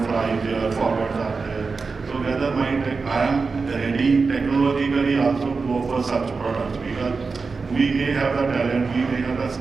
there, forwards are there. So whether I am ready technologically also to offer such products, because we may have the talent, we may have the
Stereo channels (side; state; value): left; quieter; 4.5 dB